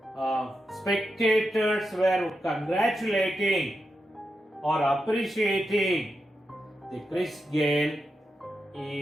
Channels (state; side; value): normal; both; correlation 0.87